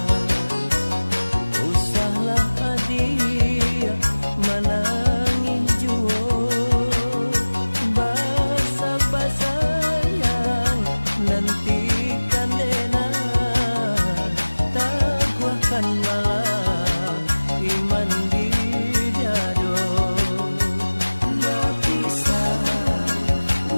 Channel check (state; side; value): inverted; both; correlation -1.00